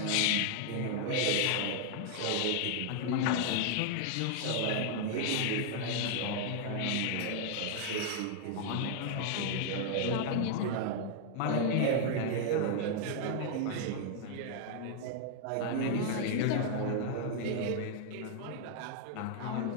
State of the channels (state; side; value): different; both; correlation 0.00